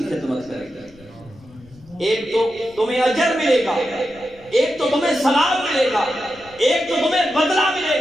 خدمت کرے گی. ایک تو تمہیں اجر ملے گا، ایک تو تمہیں ثواب ملے گا، ایک تو تمہیں بدلہ ملے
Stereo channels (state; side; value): noise; left; rumble, 25 dB below the sound